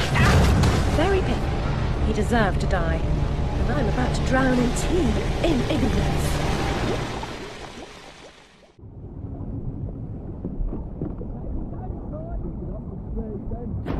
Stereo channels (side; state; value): both; identical; correlation 1.00